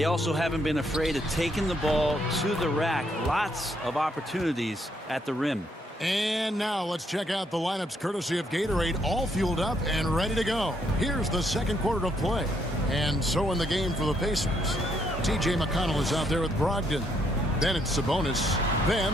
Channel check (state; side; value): normal; both; correlation 0.73